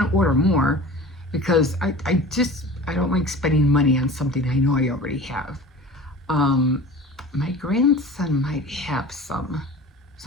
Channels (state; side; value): normal; both; correlation 0.39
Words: to order more because I don't like spending money on something I know I already have. My grandson might have some,